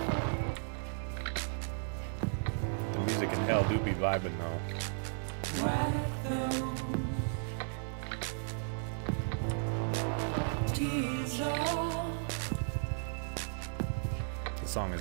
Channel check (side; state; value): left; silent; 55 dB below the other